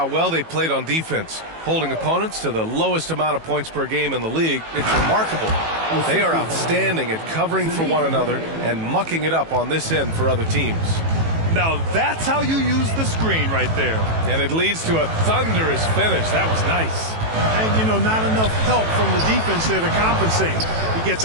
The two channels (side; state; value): left; late; 18 ms